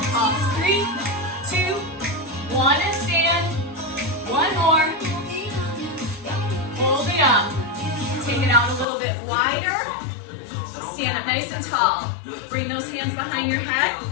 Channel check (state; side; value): drops out; right; at 8.8 s